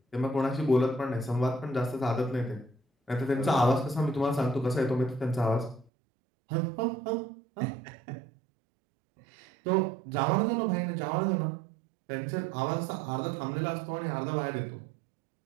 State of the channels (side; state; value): left; drops out; at 5.9 s